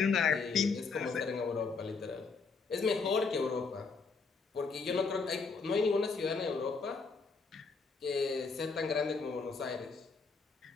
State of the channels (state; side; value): quieter; right; 4.7 dB